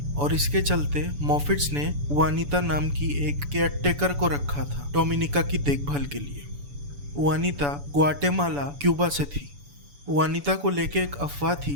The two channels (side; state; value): left; late; 7.0 ms